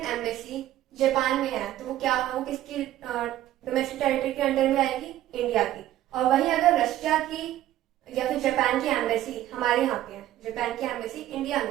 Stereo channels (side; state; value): left; quieter; 13.6 dB